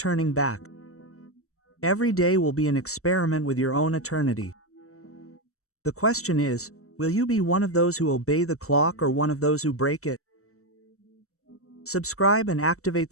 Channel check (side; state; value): right; late; 0.64 ms